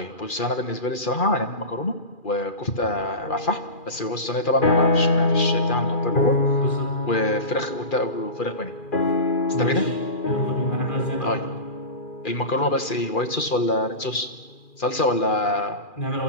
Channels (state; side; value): late; right; 2.4 ms